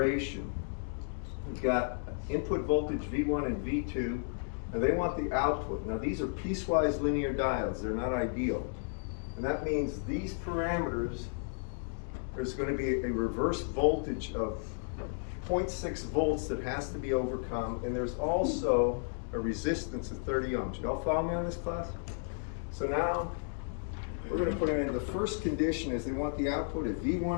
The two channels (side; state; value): right; silent; digital silence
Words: We've got input voltage V1 and V2, and they want the output. Now these are piecewise linear diodes, they're not ideal. And that means these parameters, there's going to be a reverse voltage of 0.6 volts that has to be overcome, and there's also a resistance of 30 ohms. Y'all follow me on this, class? So now, we're going to put in the first condition is they want the output of